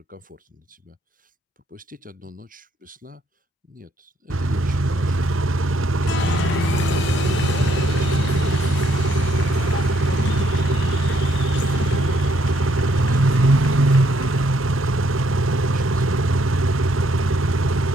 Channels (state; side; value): normal; both; correlation 0.70